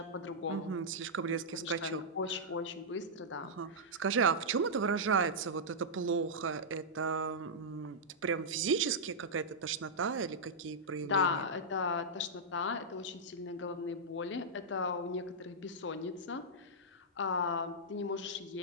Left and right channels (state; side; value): normal; both; correlation -0.09